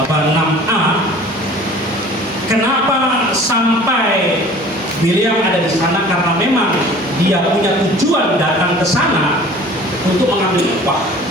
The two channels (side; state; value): both; normal; correlation 0.46